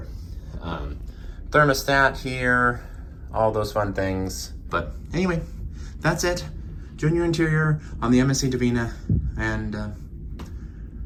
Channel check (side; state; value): both; identical; correlation 1.00